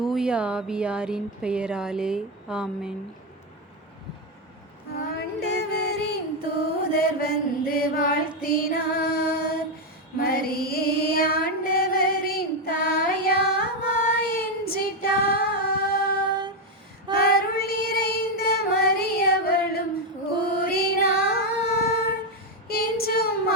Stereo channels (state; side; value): normal; both; correlation 0.05